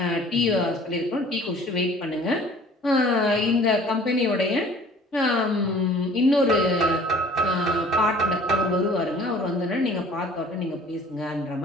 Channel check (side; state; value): both; normal; correlation 0.50